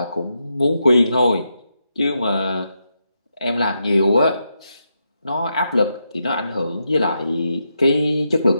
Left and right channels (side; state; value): both; inverted; correlation -0.84